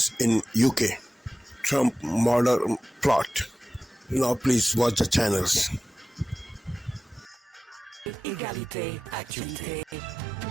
in UK. Trump murder plot. Now please watch the channels. Égalité, actualité.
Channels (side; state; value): both; normal; correlation 0.95